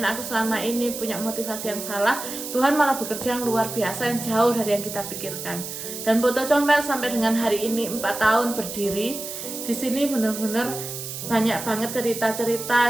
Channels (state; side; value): noise; right; hiss, 8 dB below the sound